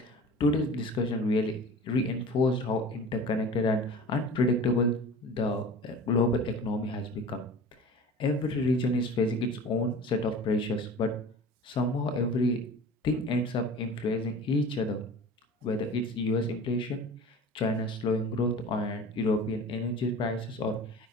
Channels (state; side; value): normal; both; correlation 0.39